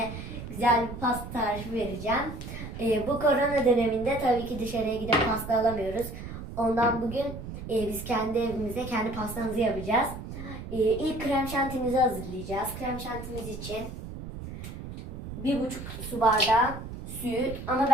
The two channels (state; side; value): noise; right; rumble, 10 dB below the sound